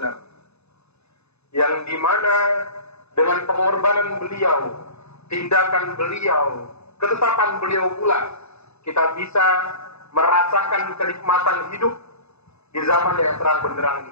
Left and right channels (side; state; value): right; late; 0.80 ms